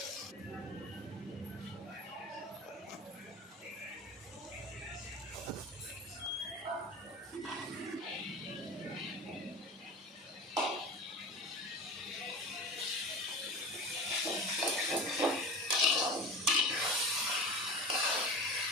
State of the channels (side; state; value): both; normal; correlation 0.32